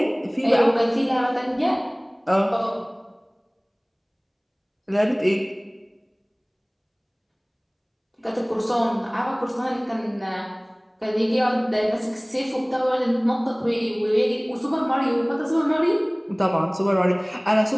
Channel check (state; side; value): identical; both; correlation 1.00